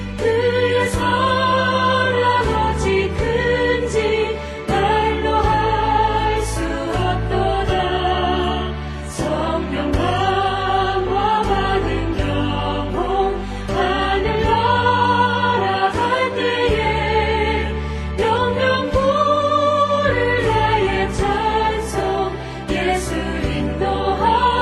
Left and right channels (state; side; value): identical; both; correlation 1.00